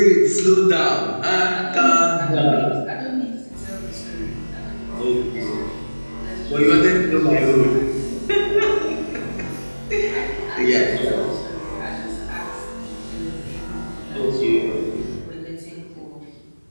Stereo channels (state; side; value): inverted; both; correlation -1.00